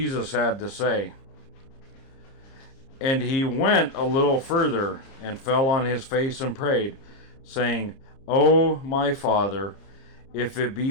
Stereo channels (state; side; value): late; right; 30 ms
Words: had to say. And he went a little further and fell on his face and prayed, saying, O my Father, if it be